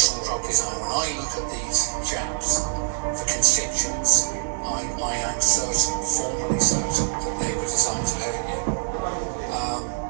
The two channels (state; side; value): silent; left; 62 dB below the other